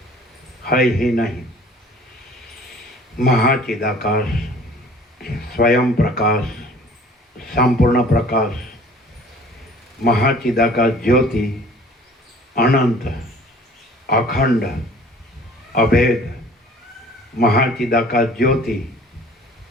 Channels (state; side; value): normal; both; correlation 0.50